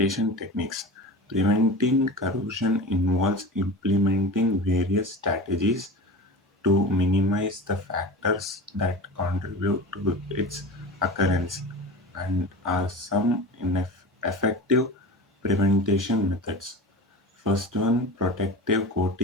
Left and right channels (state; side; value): normal; both; correlation 0.32